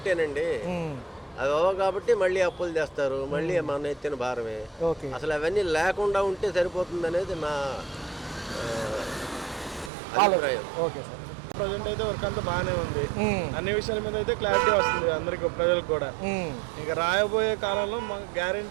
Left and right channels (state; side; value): drops out; left; at 9.9 s